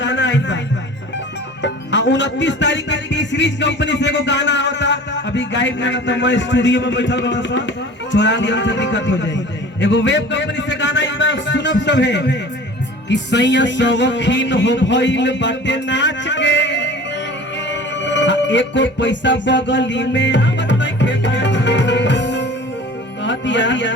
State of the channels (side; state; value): both; normal; correlation 0.42